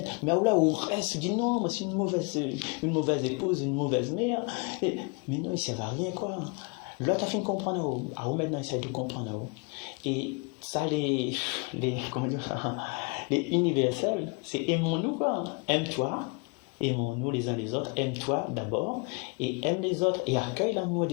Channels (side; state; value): right; quieter; 31.7 dB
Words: Mais là, on reste, on dit non, moi, c'est une mauvaise épouse, une mauvaise mère. Mais non, il ne sert à rien, quoi. L'autre a fait comprendre à où maintenant, il essaie de comprendre à où. Et ça, les universels, c'est aimons-nous, quoi. Aime-toi, aimons-nous les uns les autres, aime-toi d'abord, et aime les autres, et accueille l'amour